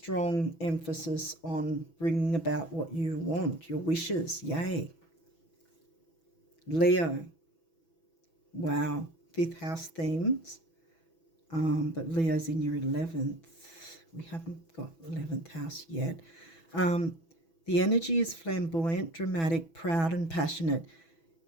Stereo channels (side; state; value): right; late; 6.1 ms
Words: emphasis on bringing about what you want, your wishes. Yay. Leo. Wow. 5th house themes. But Leo's in your 11th. We haven't got 11th house yet. The energy is flamboyant, dramatic, proud and passionate.